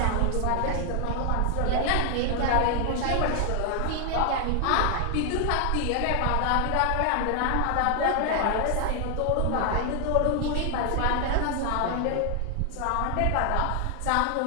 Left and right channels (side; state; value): both; different; correlation 0.00